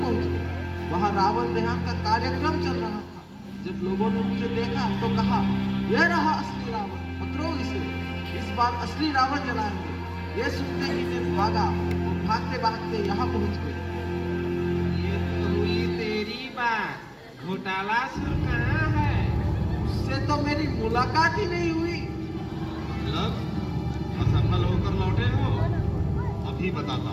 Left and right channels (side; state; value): both; identical; correlation 1.00